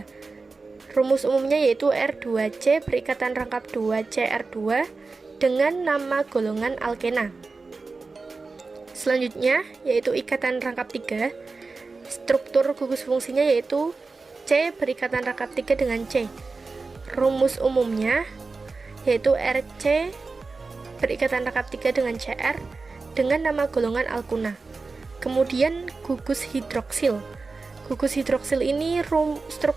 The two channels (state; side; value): quieter; left; 4.0 dB